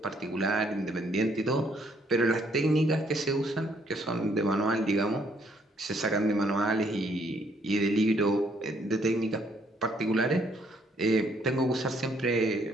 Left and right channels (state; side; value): normal; both; correlation 0.68